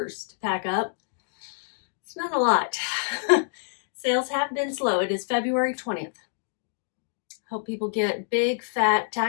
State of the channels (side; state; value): right; silent; digital silence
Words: to pack up. It's not a lot. Sales have been slow. It is February 20th. Hope people get big, fat